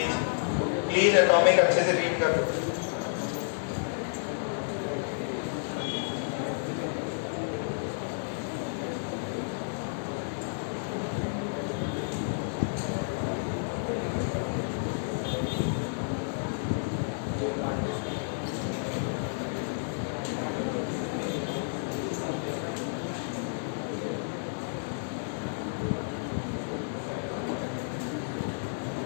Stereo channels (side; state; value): right; silent; digital silence